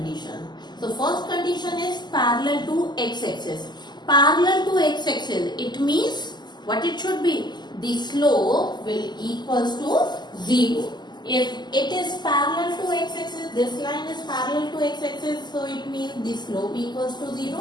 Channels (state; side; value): late; right; 0.21 ms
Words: So first condition is parallel to x-axis. Parallel to x-axis, it means what it should be? The slope will equals to 0. If it is parallel to x-axis, this line is parallel to x-axis, so it means the slope equals to